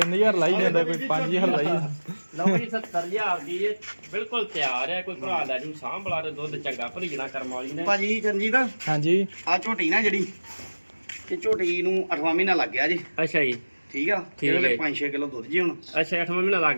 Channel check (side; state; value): both; inverted; correlation -1.00